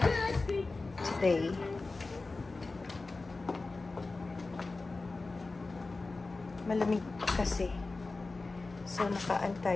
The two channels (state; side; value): quieter; right; 3.6 dB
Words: today. Malamig kasi. So, nakaan